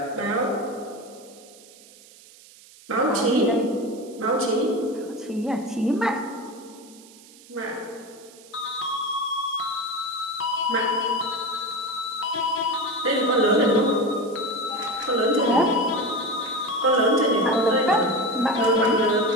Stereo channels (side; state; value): right; noise; hiss, 23 dB below the sound